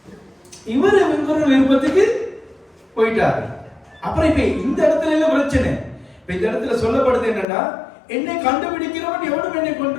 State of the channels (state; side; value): drops out; right; at 7.5 s